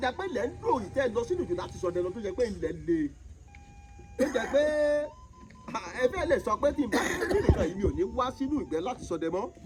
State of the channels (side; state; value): both; identical; correlation 1.00